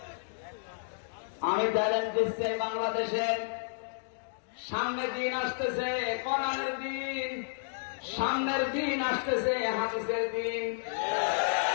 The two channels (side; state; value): right; silent; digital silence